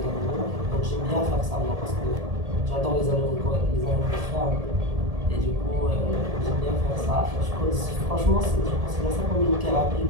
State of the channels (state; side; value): late; left; 1.7 ms